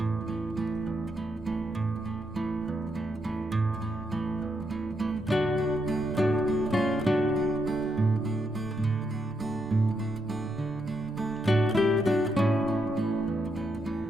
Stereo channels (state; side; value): normal; both; correlation 0.80